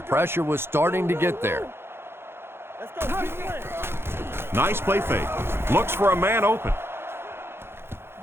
pressure was starting to get there. Nice play fake. Looks for a man open.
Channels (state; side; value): late; left; 0.11 ms